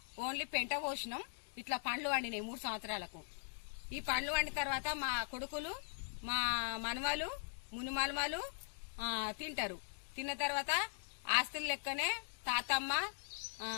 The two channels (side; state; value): right; silent; digital silence